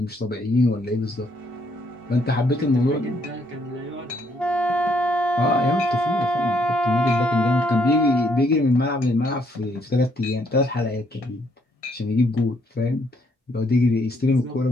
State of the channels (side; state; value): both; normal; correlation 0.70